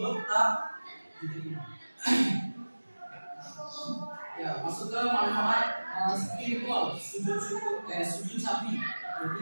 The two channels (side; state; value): both; inverted; correlation -1.00